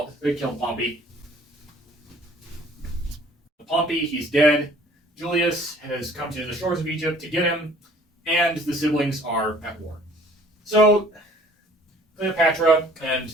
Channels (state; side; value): normal; both; correlation 0.54